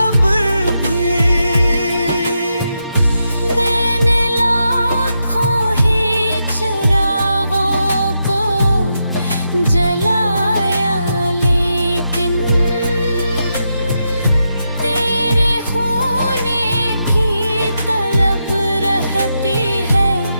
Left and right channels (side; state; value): both; inverted; correlation -0.85